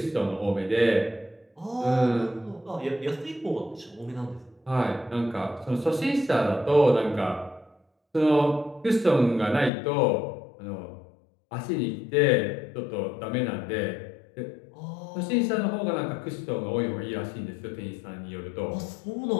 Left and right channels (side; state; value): right; drops out; at 9.7 s